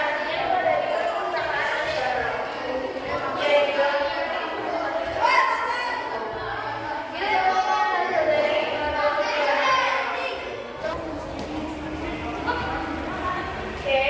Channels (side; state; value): both; identical; correlation 1.00